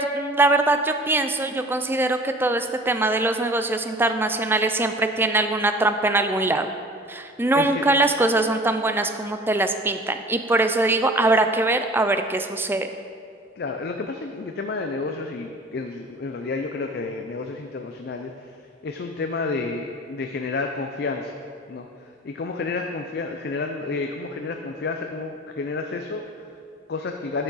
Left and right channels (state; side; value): normal; both; correlation 0.43